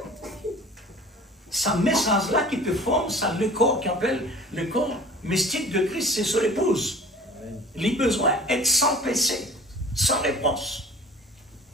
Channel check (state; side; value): normal; both; correlation 0.44